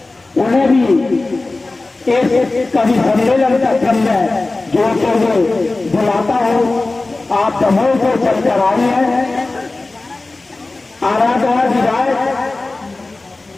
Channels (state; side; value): quieter; right; 3.2 dB